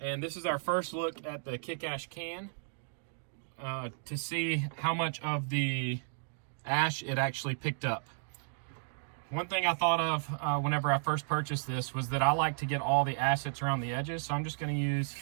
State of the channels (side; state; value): left; silent; digital silence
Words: this is our first look at the kick ash can to see how much of the ash it actually picked up. One thing I thought of whenever I first purchased this was that I like to get all the ash that's around the edges. So I'm just going to use